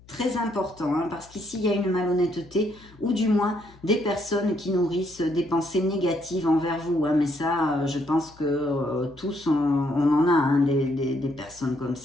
Très important, parce qu'ici, il y a une malhonnêteté, ou du moins des personnes qui nourrissent des pensées négatives envers vous. Mais ça, je pense que tous, on en a des personnes comme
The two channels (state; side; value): noise; left; hum, 25 dB below the sound